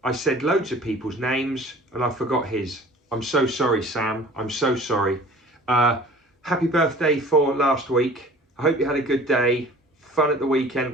I said loads of people's names and I forgot his. I'm so sorry, Sam. I'm so sorry. Happy birthday for last week. I hope you had a good day. Fun at the weekend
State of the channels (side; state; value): both; normal; correlation 0.46